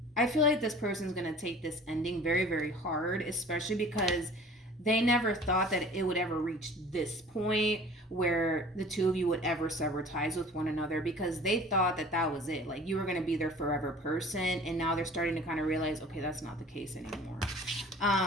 I feel like this person's going to take this ending very, very hard, especially because they never thought that it would ever reach this point where the two of you would ever sever ties with one another, because they thought that that was it. Like, you were going to be their forever person, and now they're starting to kind of realize, okay, that's not the case anymore.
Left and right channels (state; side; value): normal; both; correlation 0.46